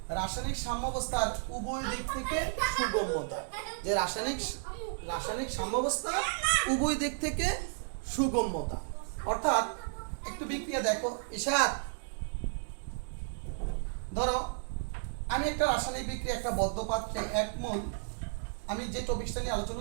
রাসায়নিক সাম্যাবস্থার উভয় দিক থেকে সুগম্যতা, যে রাসায়নিক সাম্যাবস্থা উভয় দিক থেকে সুগম্যতা। অর্থাৎ একটু বিক্রিয়া দেখো, ইশাত ধরো আমি একটা রাসায়নিক বিক্রিয়া একটা বদ্ধ পাত্রে 1 মোল, আমি যে টপিকটা নিয়ে আলোচনা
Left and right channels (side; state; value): left; silent; digital silence